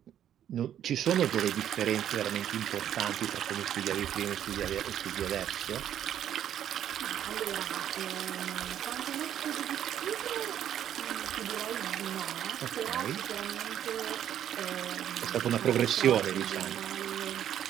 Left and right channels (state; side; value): quieter; left; 10.4 dB